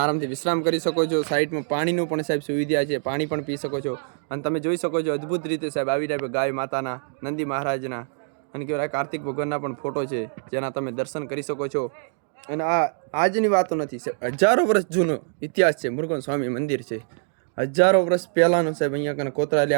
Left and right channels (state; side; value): silent; left; digital silence